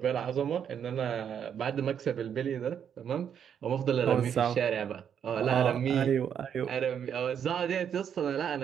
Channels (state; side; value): quieter; left; 8.4 dB